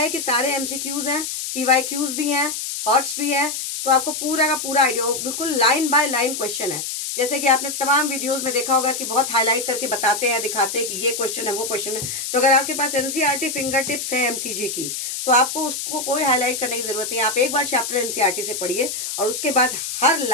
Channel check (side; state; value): left; noise; hiss, 4 dB below the sound